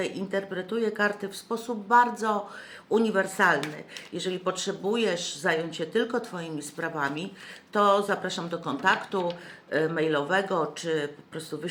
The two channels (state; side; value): identical; both; correlation 1.00